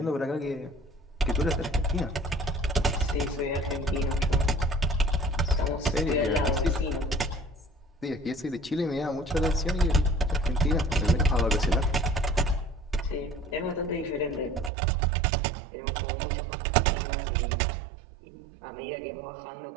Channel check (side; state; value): left; drops out; at 14.7 s